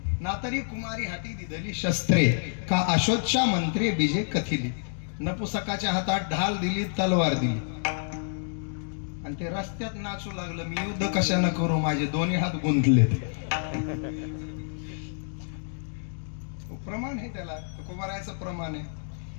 ना तरी कुमारी हाती दिधली शस्त्रे, का आशोच्चा मंत्रे बीजे कथिली. नपुसकाच्या हातात ढाल दिली, तलवार दिली आणि ते रस्त्यात नाचू लागलं, मी युद्ध कशानं करू, माझे दोन्ही हात गुंतले. प्रमाण आहे त्याला, तुकोबारायचं प्रमाण आहे.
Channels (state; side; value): silent; right; digital silence